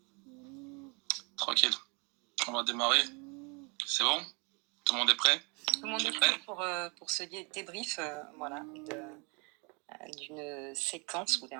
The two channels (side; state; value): left; quieter; 31.6 dB